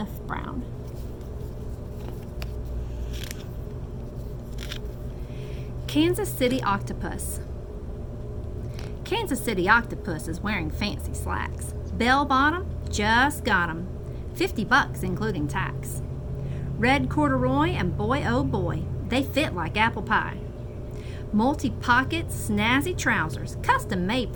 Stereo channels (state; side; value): identical; both; correlation 1.00